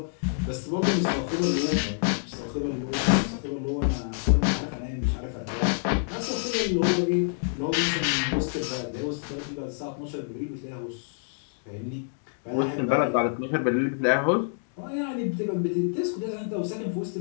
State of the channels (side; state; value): right; silent; digital silence